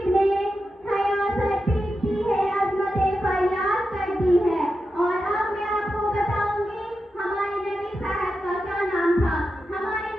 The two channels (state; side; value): normal; both; correlation 0.89